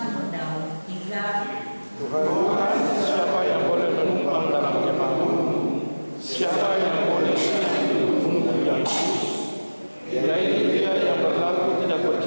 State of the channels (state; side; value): inverted; both; correlation -1.00